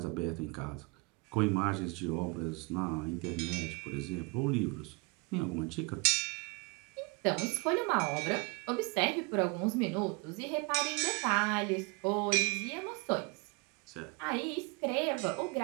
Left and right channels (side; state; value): left; quieter; 29.8 dB